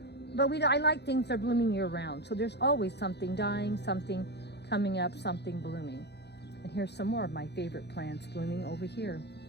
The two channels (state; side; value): late; right; 0.49 ms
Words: But I like things that are blooming year round. So there's always something dying, something coming up, something blooming. And here's some more of my favorite plants blooming over here,